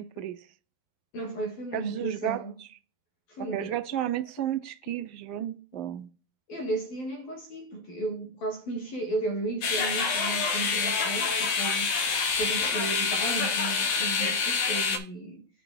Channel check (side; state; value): right; late; 12 ms